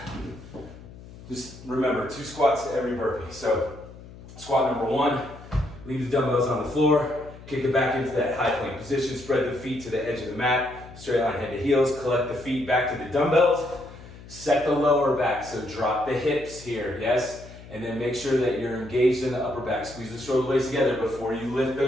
Just remember, 2 squats to every burpee. So squat number 1, leave the dumbbells on the floor, kick it back into that high plank position, spread the feet to the edge of the mat, straight line head to heels, collect the feet back to the dumbbells, set the lower back, so drop the hips here, yes? And then make sure that you're engaged in the upper back. Squeeze the shoulder blades together before you lift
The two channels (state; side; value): noise; left; hum, 17 dB below the sound